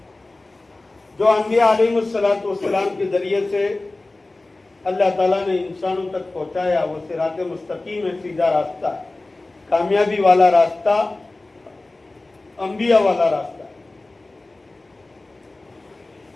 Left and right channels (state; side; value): quieter; right; 3.0 dB